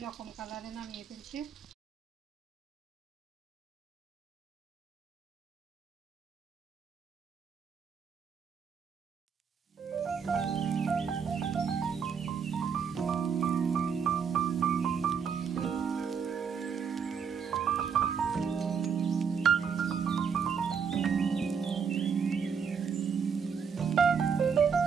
কালারে নামিয়ে ফেলছি।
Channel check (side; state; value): left; quieter; 6.5 dB